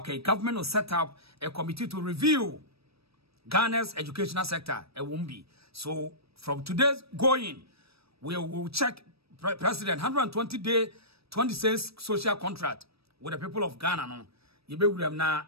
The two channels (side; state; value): left; late; 0.77 ms